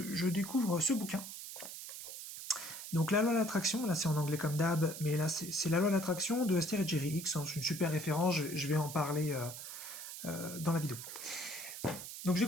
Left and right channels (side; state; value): right; noise; hiss, 10 dB below the sound